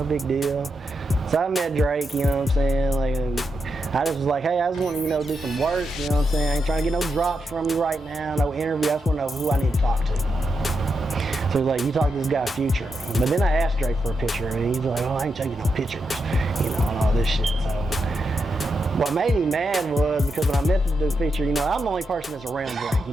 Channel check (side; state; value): both; normal; correlation 0.85